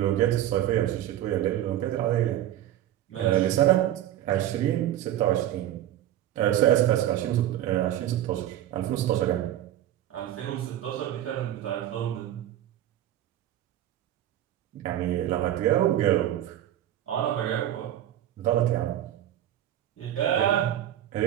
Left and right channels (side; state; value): left; quieter; 12.4 dB